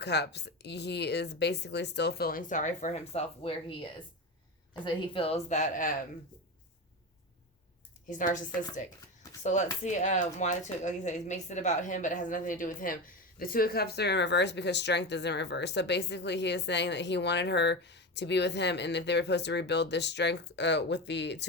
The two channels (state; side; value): normal; both; correlation 0.21